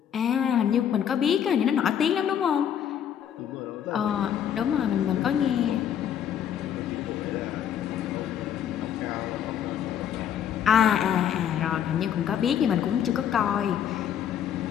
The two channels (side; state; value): right; quieter; 9.3 dB